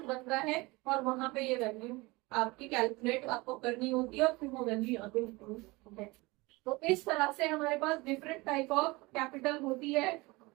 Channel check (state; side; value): quieter; left; 23.2 dB